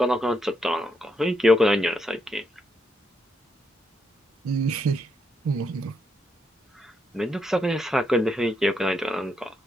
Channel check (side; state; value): both; normal; correlation 0.79